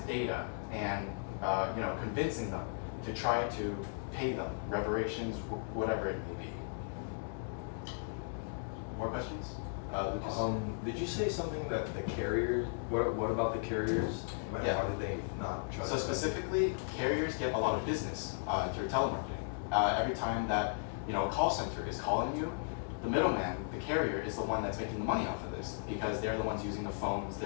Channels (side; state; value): right; silent; digital silence